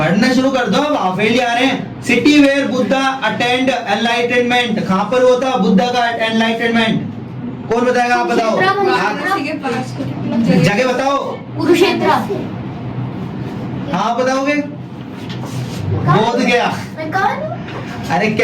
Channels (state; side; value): identical; both; correlation 1.00